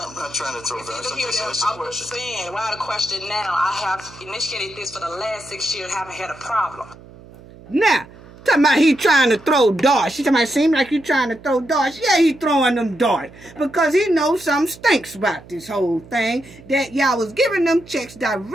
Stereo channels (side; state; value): right; noise; hum, 21 dB below the sound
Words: I'm not trying to throw darts. I'm just saying, why the question now? I have initiated this for the last 6 years, haven't had a problem. Now, talking about he trying to throw darts. She talking about seem like you trying to throw darts. Yeah, he throwing them darts. Because he knows something stinks about this whole thing. That y'all was giving them checks